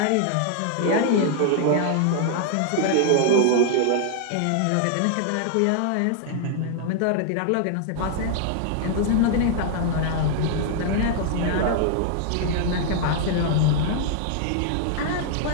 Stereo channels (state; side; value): different; both; correlation 0.00